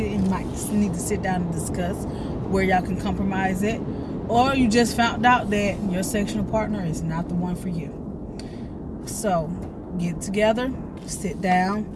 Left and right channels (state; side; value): identical; both; correlation 1.00